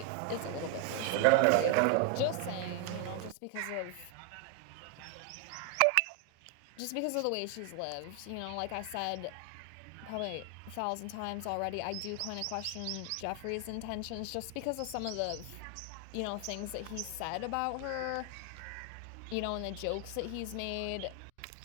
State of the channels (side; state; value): both; different; correlation 0.01